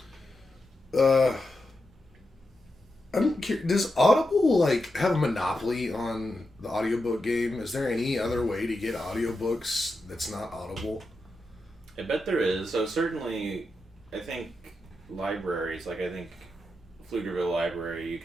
Yeah. I'm curious, does Audible like have a monopoly on the audiobook game? Is there any other way to get audiobooks that's not Audible? I bet there is. So certainly, I think libraries, like I think Pflugerville Library, you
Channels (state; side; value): normal; both; correlation 0.87